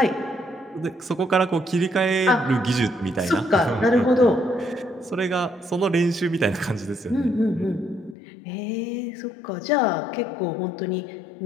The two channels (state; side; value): drops out; right; at 8.2 s